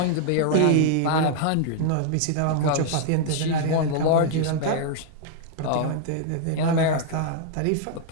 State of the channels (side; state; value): both; different; correlation -0.01